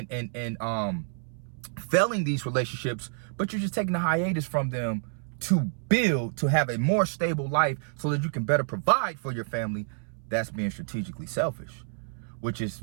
failing these relationships, but you're just taking a hiatus from them to build, to have a more stable life so that you can better provide for your family, that's being strategically selfish, which is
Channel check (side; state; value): left; silent; 59 dB below the other